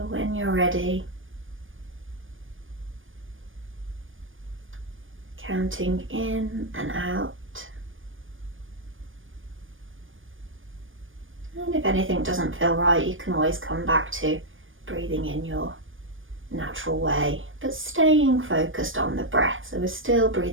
when you're ready, counting in and out. And if anything doesn't feel right, you can always come back to breathing in your natural way, but staying focused on the breath. So we're still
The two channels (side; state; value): left; late; 0.58 ms